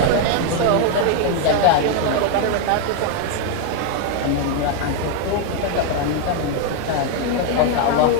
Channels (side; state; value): both; different; correlation 0.00